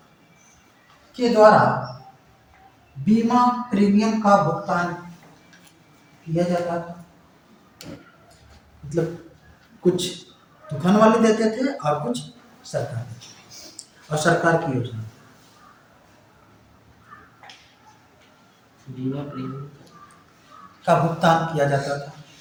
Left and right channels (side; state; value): both; identical; correlation 1.00